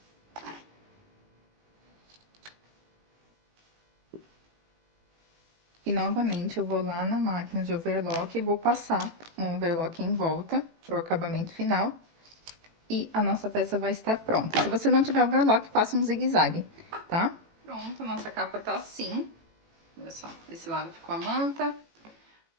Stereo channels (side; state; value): left; late; 18 ms